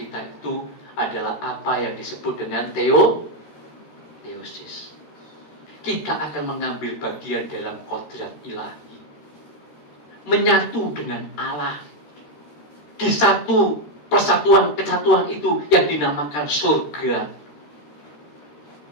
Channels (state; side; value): late; right; 13 ms